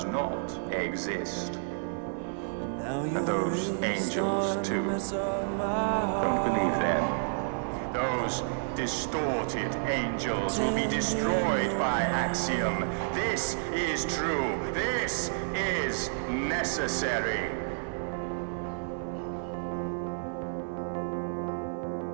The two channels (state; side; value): silent; left; digital silence